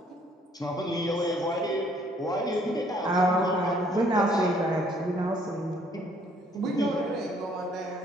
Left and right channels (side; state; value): both; normal; correlation 0.63